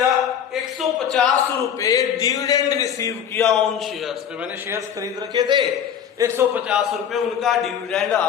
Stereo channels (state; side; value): quieter; right; 8.6 dB